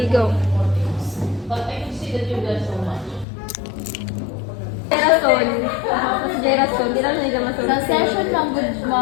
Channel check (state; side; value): drops out; right; at 3.2 s